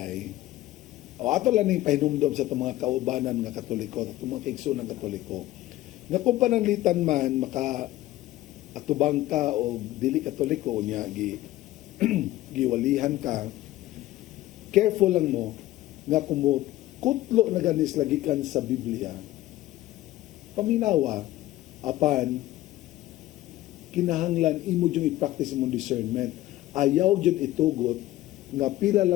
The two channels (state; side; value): quieter; right; 15.7 dB